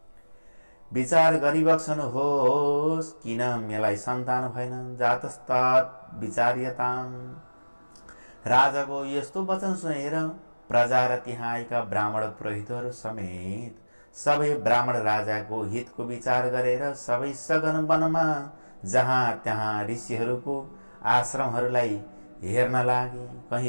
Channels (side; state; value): both; inverted; correlation -1.00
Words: विचार गरिबक्सनुहोस्, किन मलाई सन्तान भएन, जातस्तत् विचार्यताम्। राजाको यस्तो वचन सुनेर प्रजा र त्यहाँ आएका ब्राह्मण पुरोहितहरू समेत सबै ब्राह्मण राजाको हितको विचार गरेर सबै सघन वनमा जहाँ त्यहाँ ऋषिहरूको आश्रमहरूलाई हेर्न लागे।